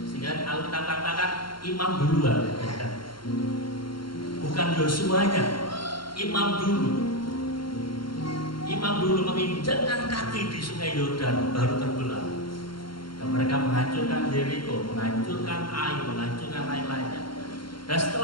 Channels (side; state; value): right; late; 0.73 ms